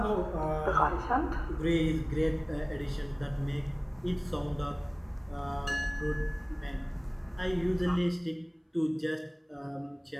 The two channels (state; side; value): identical; both; correlation 1.00